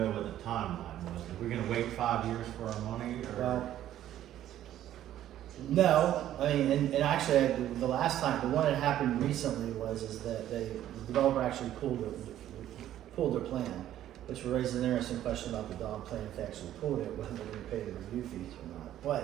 what the timeline was. Are we gonna wait 5 years for our money, or? Well, no, I mean, and actually, the last time, the one that happened recently is that the developer actually pulled their plan, which raised an interesting question about the dog plan, if they actually pulled it, whether they're gonna pay the review fees or not.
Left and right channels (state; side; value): quieter; left; 12.2 dB